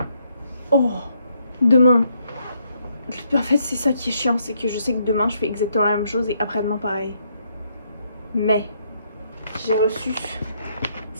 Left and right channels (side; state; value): both; inverted; correlation -0.73